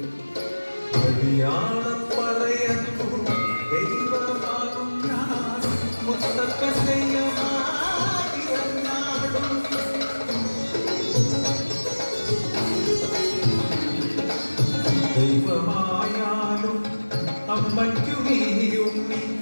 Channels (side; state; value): both; inverted; correlation -1.00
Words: അടിയാളപ്പറയുന്നു ദൈവമാകും ഞാൻ മുത്തപ്പൻ്റെയും ദൈവമായാലും അമ്മയ്ക്കു നീയുണ്ണി